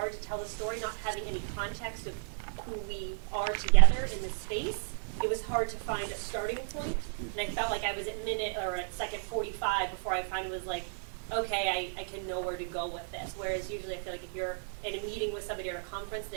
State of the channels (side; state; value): left; silent; digital silence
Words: to tell the story, not having any context of who we are together in this space. It was hard to find a starting point, and I felt like I was at second 45 before I finally was like, okay, I can know where to go with this. Whereas usually I feel like if you're in a meeting with somebody or a conference,